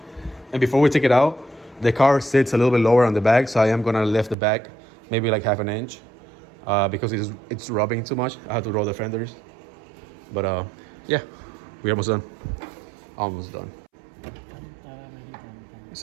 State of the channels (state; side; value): drops out; left; at 4.4 s